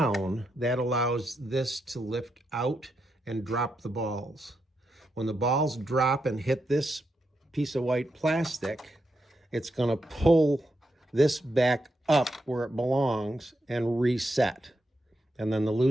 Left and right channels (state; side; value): normal; both; correlation 0.84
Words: that allows this to lift out and drop the balls. When the balls drop and hit this piece of white plastic, it's going to pull this back up where it belongs and reset. And then the